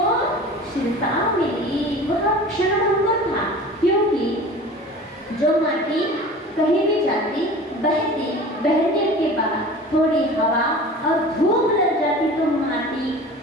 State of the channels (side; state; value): both; normal; correlation 0.39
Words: स्थिरता मिली। वह क्षण भंगुर था, क्योंकि जो माटी कहीं भी जाती, बहती, बहने के बाद थोड़ी हवा और धूप लग जाती तो माटी